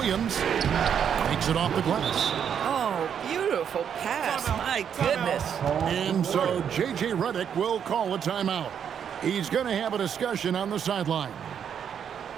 Takes it off the glass. Oh, beautiful pass. My goodness. And so J.J. Redick will call a timeout. He's going to have a discussion on the sideline.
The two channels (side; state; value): left; quieter; 8.2 dB